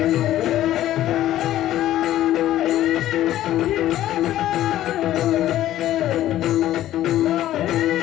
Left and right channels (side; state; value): right; quieter; 13.4 dB